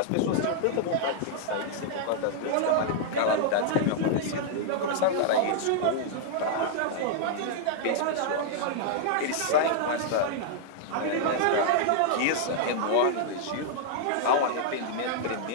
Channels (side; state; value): both; different; correlation -0.01